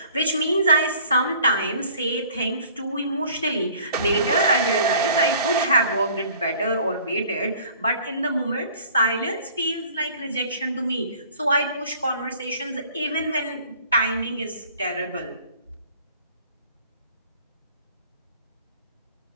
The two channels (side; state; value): both; inverted; correlation -0.52